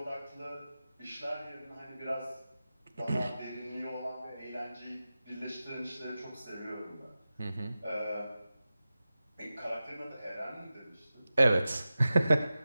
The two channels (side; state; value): both; inverted; correlation -0.94